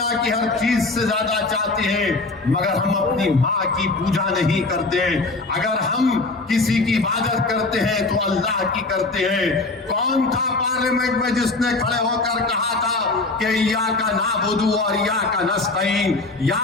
की हर चीज से ज्यादा चाहते हैं, मगर हम अपनी माँ की पूजा नहीं करते। अगर हम किसी की इबादत करते हैं तो अल्लाह की करते हैं। कौन था पार्लियामेंट में जिसने खड़े होकर कहा था कि या का नाबुदू और या का नस्तईन?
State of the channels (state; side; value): quieter; right; 3.3 dB